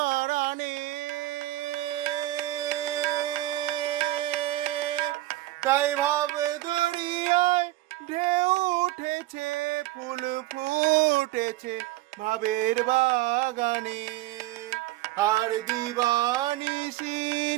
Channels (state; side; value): quieter; left; 16.8 dB